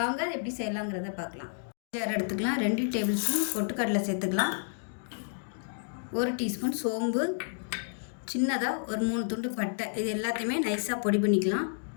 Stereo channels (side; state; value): right; silent; digital silence